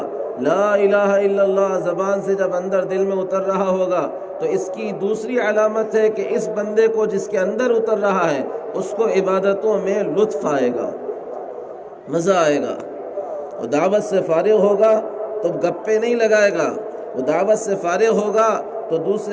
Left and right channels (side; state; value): both; identical; correlation 1.00